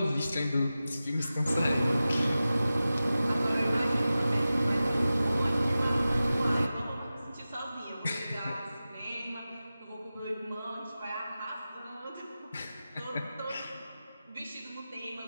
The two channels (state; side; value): inverted; both; correlation -0.95